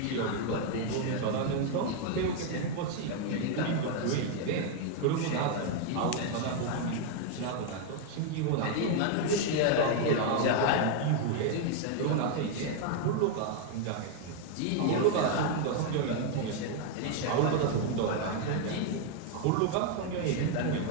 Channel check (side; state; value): both; different; correlation 0.00